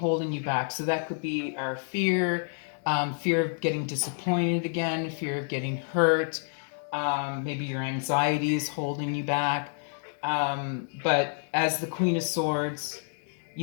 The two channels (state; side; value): silent; right; 59 dB below the other